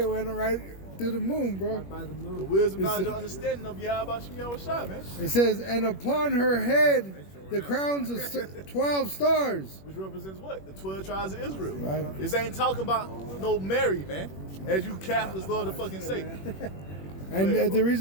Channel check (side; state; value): right; late; 21 ms